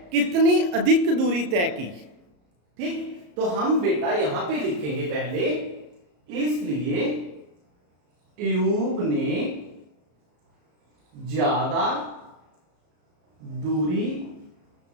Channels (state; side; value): late; left; 34 ms